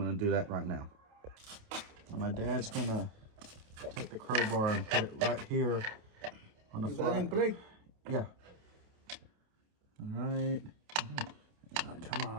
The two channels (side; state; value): left; late; 28 ms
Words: to do that right now. And my dad's going to take the crowbar and put it right here on the You got it in play? Yeah. All right. Oh, come